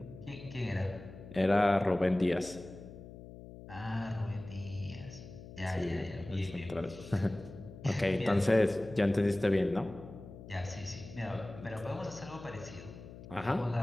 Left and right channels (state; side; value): noise; left; hum, 15 dB below the sound